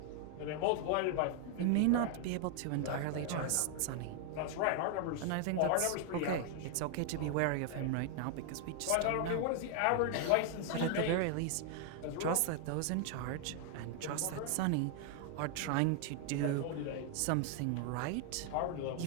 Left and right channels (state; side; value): different; both; correlation 0.00